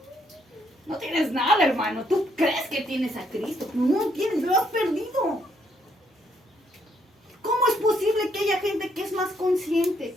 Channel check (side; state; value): both; normal; correlation 0.72